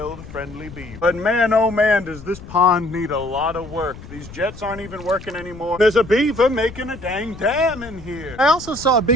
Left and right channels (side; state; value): left; noise; rumble, 15 dB below the sound